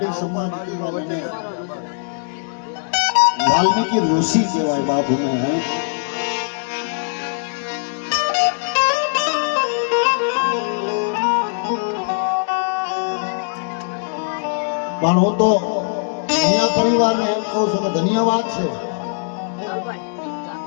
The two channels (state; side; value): silent; right; 65 dB below the other